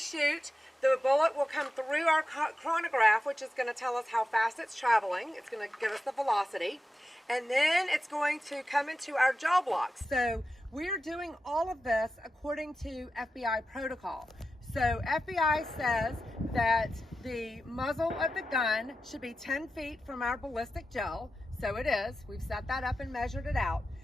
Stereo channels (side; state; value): both; normal; correlation 0.91